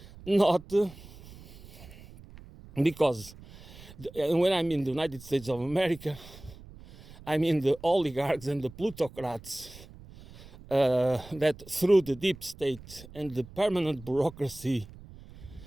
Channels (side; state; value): right; noise; rumble, 19 dB below the sound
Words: Not because when I'm in the United States of America, I mean the oligarchs and the plutocrats that through the deep state and the permanent bureaucracy